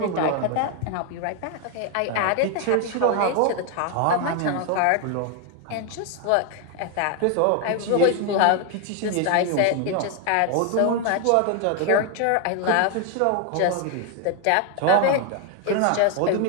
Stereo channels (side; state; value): both; different; correlation 0.01